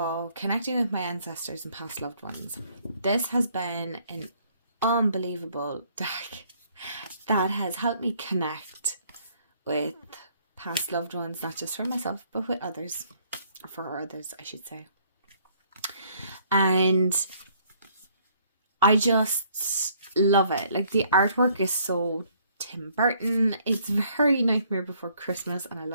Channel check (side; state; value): both; inverted; correlation -0.64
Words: connecting with my ancestors and past loved ones. This has been an unbelievable deck that has helped me connect with past loved ones, not just for myself, but with others, for others, I should say. And I just love it. Like, the artwork is so Tim Burton. It's very Nightmare Before Christmas, and I